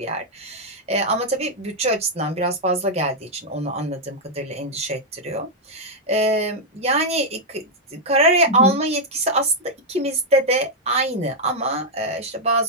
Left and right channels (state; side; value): normal; both; correlation -0.03